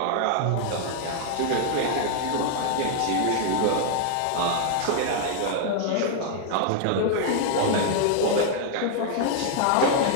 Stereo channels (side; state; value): both; different; correlation 0.00